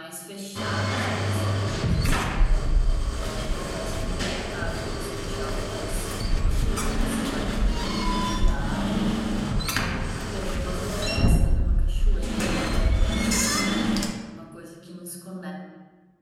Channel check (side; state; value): both; identical; correlation 1.00